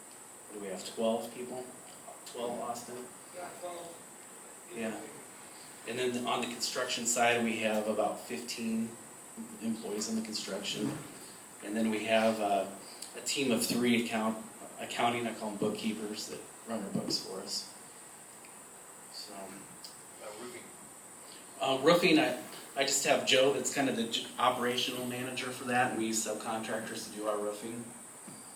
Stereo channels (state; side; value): identical; both; correlation 1.00